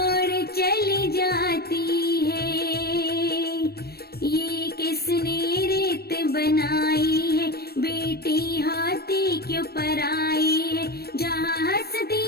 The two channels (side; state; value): right; late; 0.46 ms